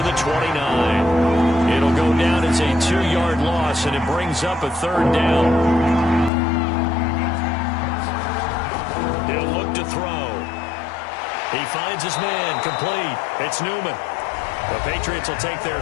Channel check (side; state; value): right; drops out; at 6.3 s